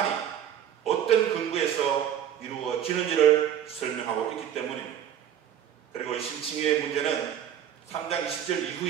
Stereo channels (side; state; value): left; quieter; 10.1 dB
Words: 어떤 근거에서 이루어지는지를 설명하고 있기 때문입니다. 그리고 이 심칭의 문제는 3장 20절